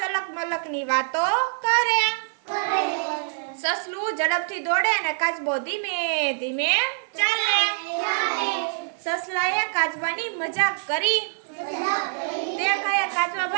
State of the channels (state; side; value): silent; left; digital silence